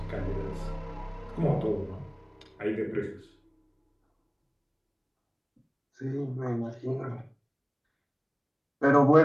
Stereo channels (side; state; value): both; identical; correlation 1.00